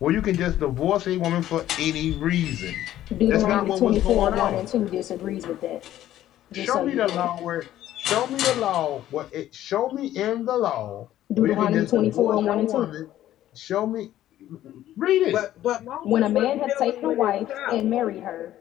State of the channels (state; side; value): quieter; right; 13.0 dB